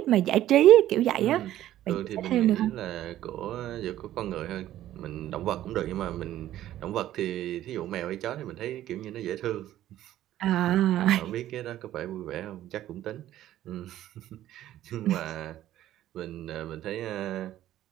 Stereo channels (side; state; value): left; quieter; 13.2 dB